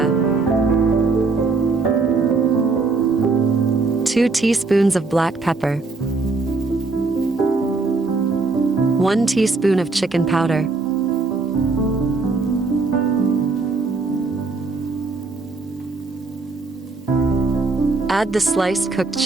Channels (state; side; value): quieter; left; 3.8 dB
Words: 2 teaspoons of black pepper, 1 teaspoon of chicken powder, add the sliced cooked